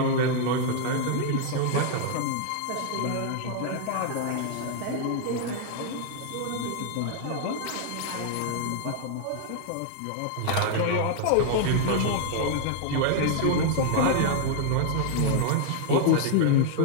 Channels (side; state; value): both; different; correlation 0.00